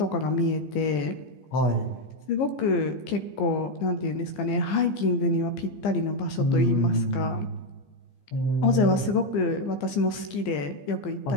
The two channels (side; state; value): right; late; 15 ms